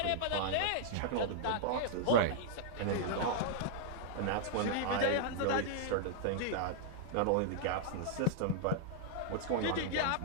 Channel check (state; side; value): different; both; correlation -0.01